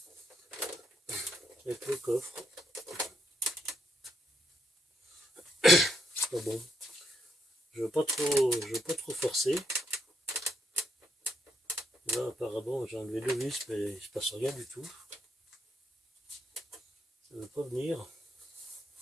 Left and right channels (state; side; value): normal; both; correlation 0.77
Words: coffre. Pas bon. Je veux pas trop forcer. Là apparemment j'ai enlevé deux vis mais il se passe rien du tout. Ça ne veut pas venir.